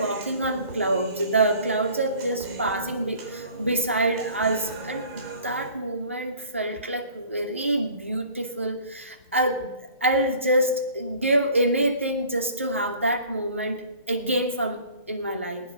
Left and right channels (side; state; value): both; inverted; correlation -0.49